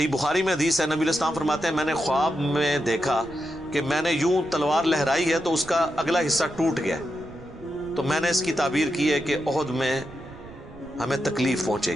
بخاری میں حدیث ہے، نبی علیہ السلام فرماتے ہیں میں نے خواب میں دیکھا کہ میں نے یوں تلوار لہرائی ہے تو اس کا اگلا حصہ ٹوٹ گیا، تو میں نے اس کی تعبیر کی ہے کہ احد میں ہمیں تکلیف پہنچے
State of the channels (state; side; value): noise; right; rumble, 18 dB below the sound